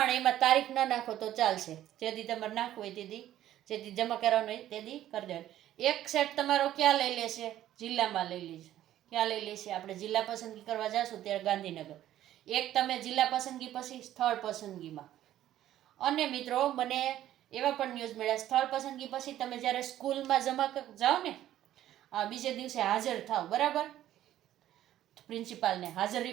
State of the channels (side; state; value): left; quieter; 12.7 dB